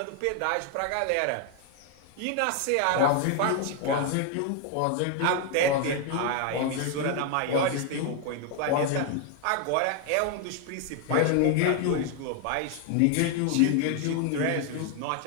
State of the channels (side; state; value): both; different; correlation 0.01